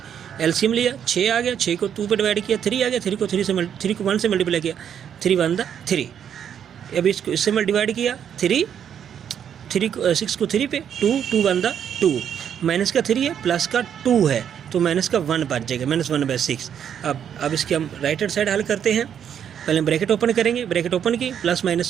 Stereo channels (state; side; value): quieter; left; 8.7 dB